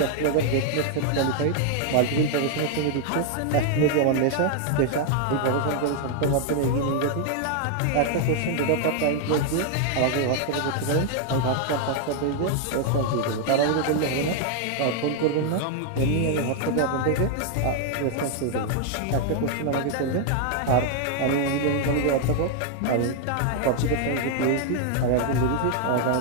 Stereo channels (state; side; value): different; both; correlation 0.00